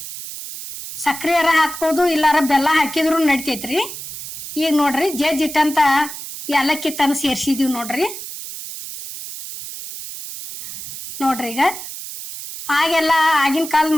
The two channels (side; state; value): right; noise; hiss, 10 dB below the sound